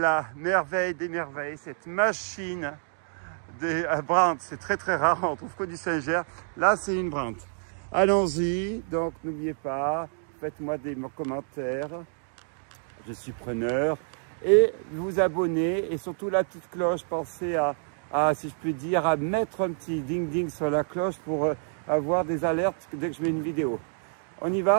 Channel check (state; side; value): silent; left; 59 dB below the other